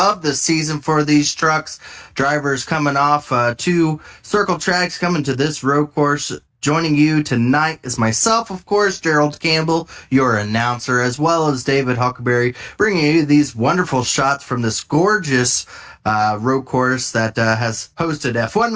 the season for these trucks. Drivers coming off two circle tracks, coming to this road course. Joining you tonight is myself, of course, Gerald Campbell, your announcer, as well as David Huckleberry, bringing you these wonderful shots from this gorgeous road course that has hosted F1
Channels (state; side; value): identical; both; correlation 1.00